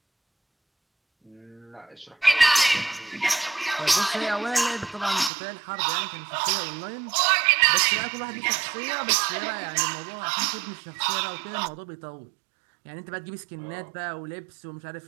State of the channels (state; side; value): drops out; left; at 5.3 s